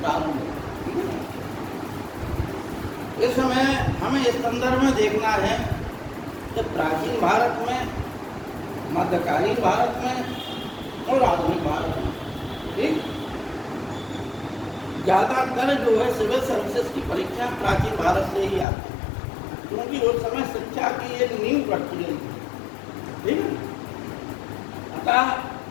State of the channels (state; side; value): drops out; right; at 18.7 s